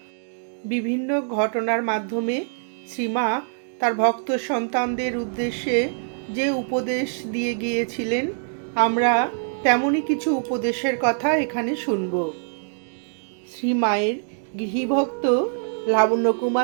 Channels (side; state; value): left; silent; 63 dB below the other